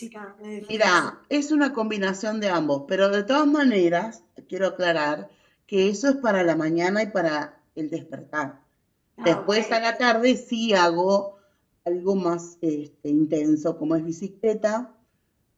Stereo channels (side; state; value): both; identical; correlation 1.00